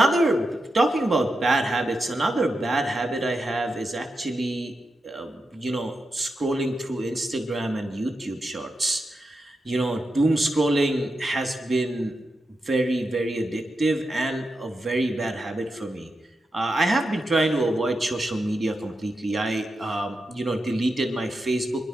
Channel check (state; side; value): normal; both; correlation 0.88